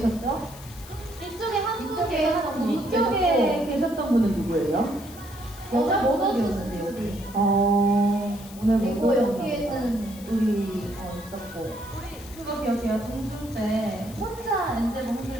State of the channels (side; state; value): left; noise; hiss, 18 dB below the sound